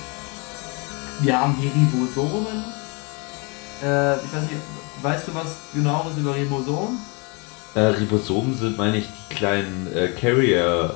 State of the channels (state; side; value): quieter; right; 31.7 dB